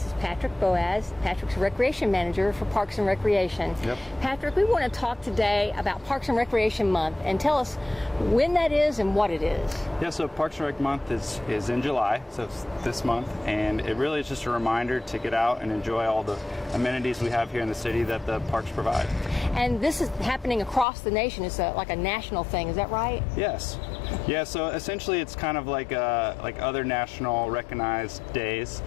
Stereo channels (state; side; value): drops out; right; at 20.9 s